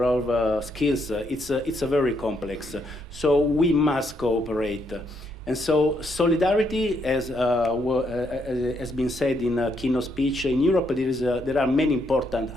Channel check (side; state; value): both; normal; correlation 0.75